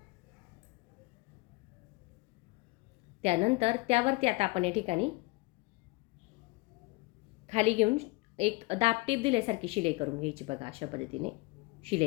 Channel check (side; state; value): right; quieter; 24.4 dB